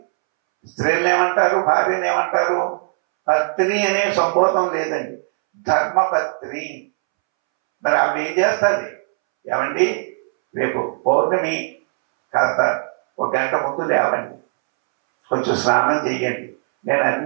స్త్రీలను ఏమంటారు? భార్యను ఏమంటారు? పత్ని అనే సంబోధం లేదండి, ధర్మపత్ని. మరి ఆవిడ ఏం చేస్తుంది? ఏమండి రేపు పౌర్ణమి, కాస్త 1 గంట ముందు లేవండి, కొంచెం స్నానం చెయ్యండి, నేను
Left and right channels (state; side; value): silent; left; 66 dB below the other